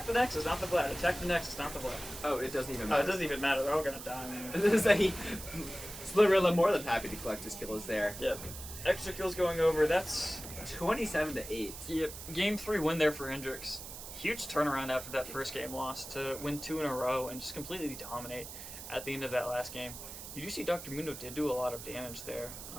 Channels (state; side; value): noise; right; hiss, 11 dB below the sound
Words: the Nexus, not the Vlad. Attack the Nexus, not the Vlad. Oh, it doesn't even Oh, matter. it doesn't even matter. They're all gonna die, man. This is a Slurilla more than happy to collect his kills there. Yep. Extra kills going over. That's 27-8. yep. Game 3 win there for Hendrix. Huge turnaround after that first game loss to win 2 in a row and just completely dominate at the end of that last game. You do see Dr. Mundo did do a lot of damage there,